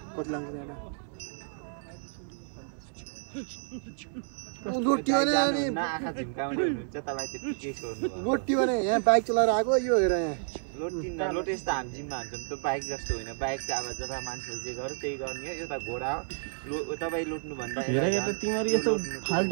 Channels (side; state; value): left; silent; 58 dB below the other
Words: कति लाग्छ यहाँ लोटी भने अनि आँखा झिम्काउने हुनुहुन्छ तपाईँ त्यति केही छोड्नु लोटी भने यहाँ बाइक चलाएर आएको यो हेर यहाँ लोटे यस्तो हामी जिम्मा हान्छौँ त्यो बाइक जस्तो होइन बाइक चाहिँ अब जता मान्छेले जे गर्यो त्यही गर्ने हो एउटा घोडा तपाईँ लुट्नुभन्दा हेर तिमीहरू यस्तो